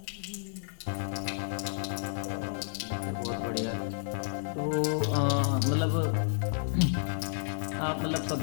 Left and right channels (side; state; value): right; silent; 57 dB below the other